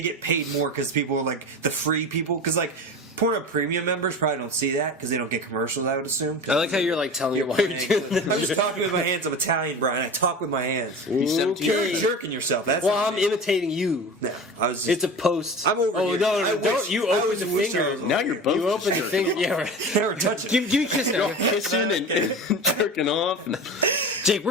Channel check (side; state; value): both; normal; correlation 0.31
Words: paid more because people are like the free people because like Pornhub Premium members probably don't see that because they don't get commercials. I would assume. I like how you're like telling me why you're doing this. I'm just talking with my hands. I'm Italian, Brian. I talk with my hands. $17. You're jerking yourself. That's Well, what I'm imitating you. No, I was. Just, It's a post. I'm over Oh here. no, I don't wish- you I open wish the I was finger? over Now here. you're both You open the finger. Yeah, right. Never touch it. Give me a kiss now. Kissing and jerking off. Jake,